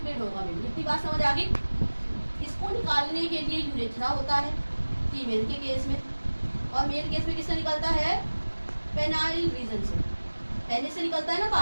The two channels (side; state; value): both; inverted; correlation -1.00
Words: होगा। मेनली इतनी बात समझ आ गई। इसको निकालने के लिए यूरेथ्रा होता है फीमेल के केस में, और मेल केस में किससे निकलता है, पेनाइल रीजन से, पेनिस से निकलता है ना